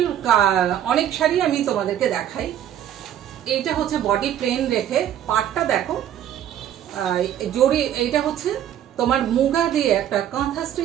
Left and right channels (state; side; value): quieter; left; 10.7 dB